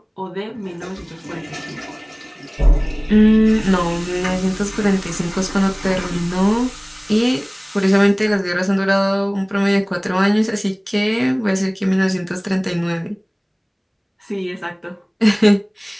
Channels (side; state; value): both; identical; correlation 1.00